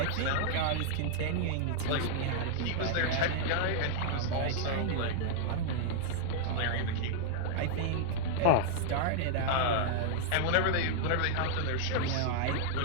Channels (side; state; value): both; different; correlation -0.01